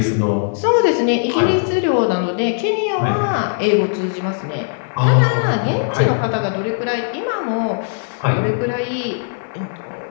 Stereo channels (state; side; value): silent; right; 65 dB below the other